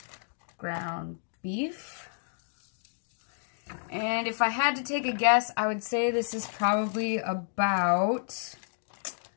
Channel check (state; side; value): silent; right; digital silence